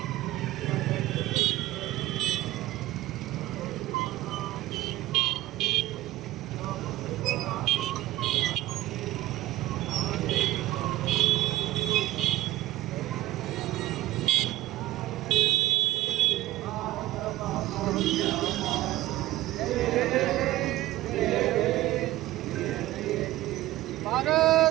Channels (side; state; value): left; quieter; 16.1 dB